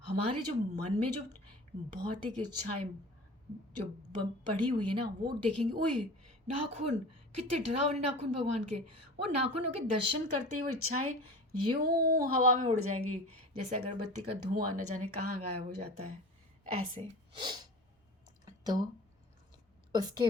हमारे जो मन में जो भौतिक इच्छाएं जो पड़ी हुई है ना, वो देखेंगे, ओए नाखून, कितने डरावने नाखून भगवान के। वो नाखूनों के दर्शन करते ही वो इच्छाएं यूं हवा में उड़ जाएंगी, जैसे अगरबत्ती का धुआं न जाने कहाँ गायब हो जाता है, ऐसे। तो उसके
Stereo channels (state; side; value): normal; both; correlation 0.37